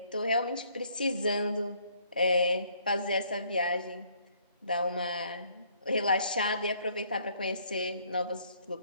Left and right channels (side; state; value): both; inverted; correlation -0.64